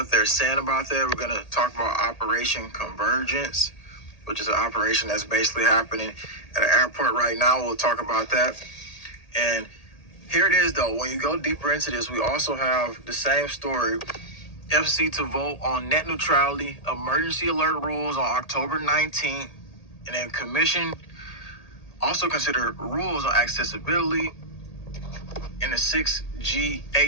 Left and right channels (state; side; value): late; right; 1.8 ms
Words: they're saying about that. We're going to talk about Operation Convergence, which is an operation that's basically happening at an airport right now. We'll talk about that. And here it is, though. When you go deeper into this, we also have the same story. FCC to vote on net neutrality, emergency alert rules on October 19th. And then commission also consider rules on accessibility in the 6G